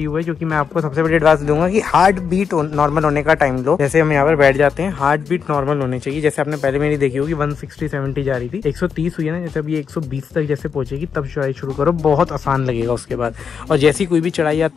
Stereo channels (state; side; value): quieter; right; 6.5 dB